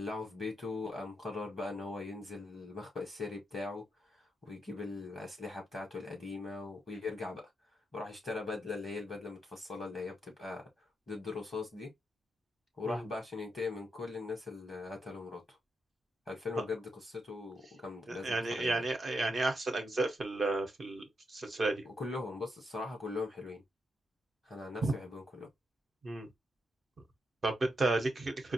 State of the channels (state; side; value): normal; both; correlation 0.82